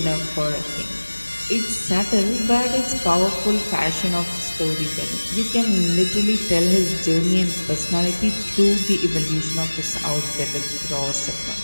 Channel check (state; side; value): inverted; both; correlation -1.00